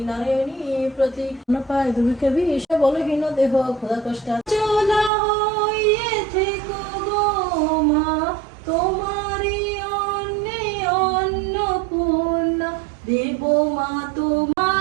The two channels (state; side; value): drops out; left; at 5.1 s